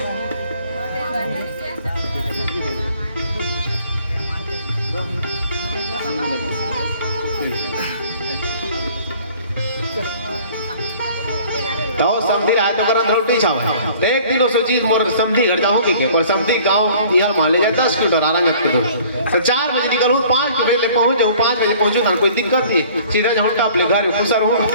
तो समझी रहा है तो करन रोटी छाव तो एक दिन उस चीज मोर समझी घर जाऊं के पर समझी गांव यहां मान ले जाए 10 किलोमीटर आराम के दूर तो 4 बजे निकलूं 5 बजे ले पहुंच जाऊं 5 बजे पहुंचूं ना कोई दिक्कत नहीं सीधा जाऊं अपने घर में खुशर हूं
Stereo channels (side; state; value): both; inverted; correlation -0.52